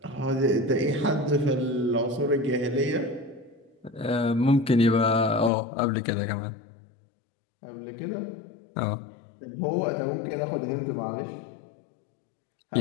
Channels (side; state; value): right; drops out; at 5.5 s